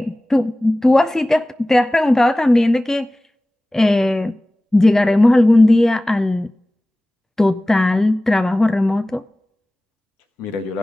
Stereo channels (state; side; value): normal; both; correlation 0.98